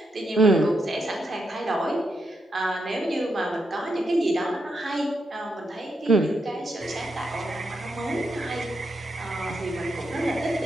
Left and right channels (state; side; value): normal; both; correlation 0.82